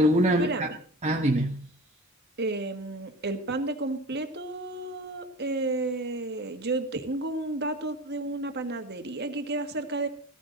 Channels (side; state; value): both; normal; correlation 0.36